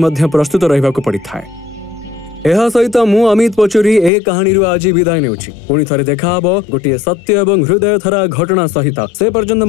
प्रस्तुत रहिबा को पड़ी थाए। एहा सहित मु अमित पचुरी ए कहानी रु आज विदाय नेउछि। पुणी थरे देखा हबो गोटिए सत्य एवं हृदय थरा घटना सहित। से पर्यंत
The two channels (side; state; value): right; drops out; at 4.1 s